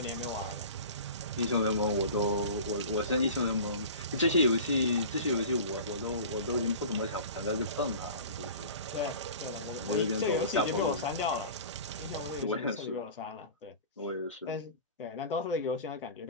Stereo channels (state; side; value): inverted; both; correlation -0.37